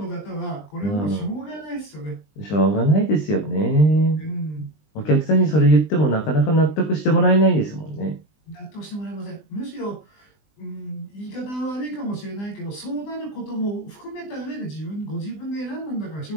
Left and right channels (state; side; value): late; right; 20 ms